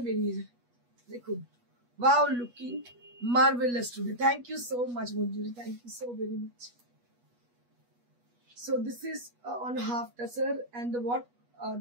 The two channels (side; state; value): left; late; 8.3 ms